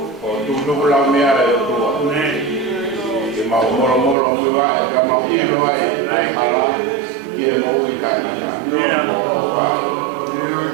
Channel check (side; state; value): left; drops out; at 4.2 s